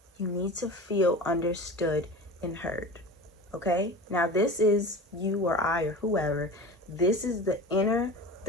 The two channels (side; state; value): both; normal; correlation 0.34